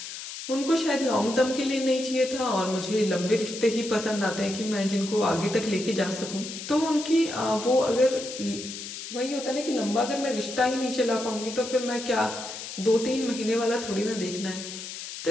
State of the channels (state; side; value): noise; left; hiss, 9 dB below the sound